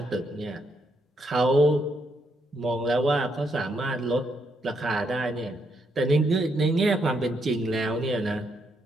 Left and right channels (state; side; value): normal; both; correlation 0.77